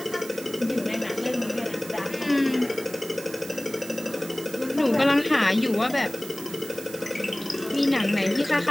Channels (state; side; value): noise; right; hiss, 15 dB below the sound